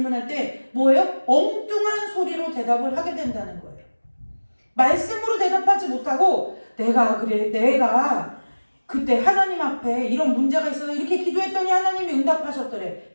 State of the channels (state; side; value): inverted; both; correlation -1.00